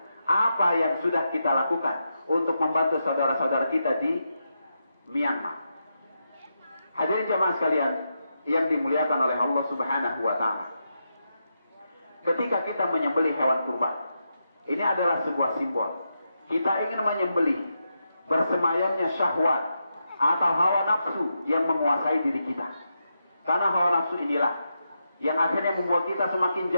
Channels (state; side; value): inverted; both; correlation -0.85